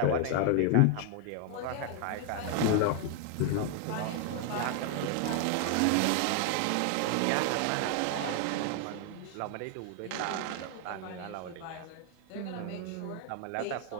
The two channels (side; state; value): both; different; correlation 0.00